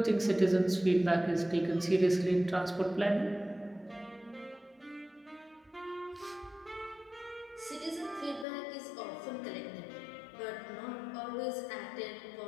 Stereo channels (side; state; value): right; drops out; at 8.5 s